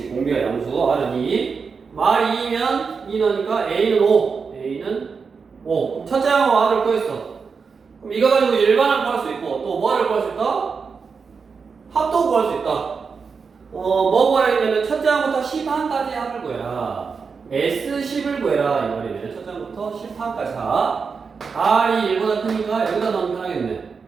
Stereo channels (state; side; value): quieter; left; 5.4 dB